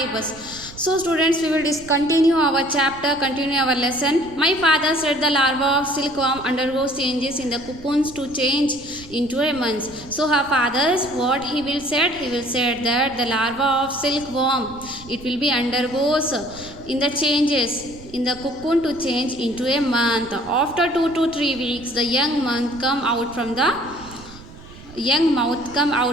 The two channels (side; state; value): right; noise; rumble, 18 dB below the sound